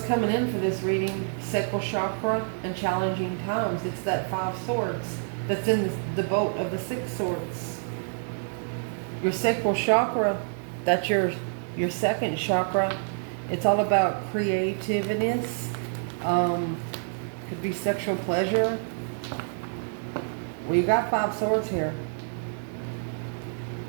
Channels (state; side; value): silent; left; digital silence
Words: coming in for this reading? Sacral chakra and challenging times. It's that 5 swords that's in the boat of the 6 swords. Your sacral chakra, that's your second chakra. It's all about creativeness. Could be sexual pleasure. Well, you got 5 swords here.